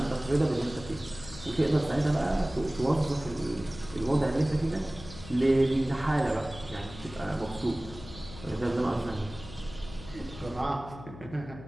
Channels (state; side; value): noise; left; hum, 15 dB below the sound